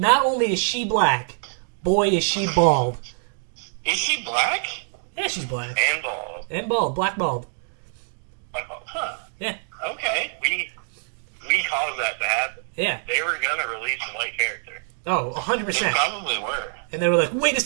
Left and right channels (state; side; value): silent; left; digital silence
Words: only is she black, boy, is she bald. Is she black? Yeah, she's black. And bald. And bald. Black bald. Huh. Yeah. Okay. We caused that to happen. Yeah. They were going to release a white character. Oh, They 100%. probably were. And they were like, wait a